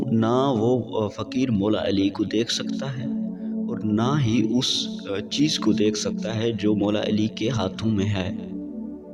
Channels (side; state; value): both; identical; correlation 1.00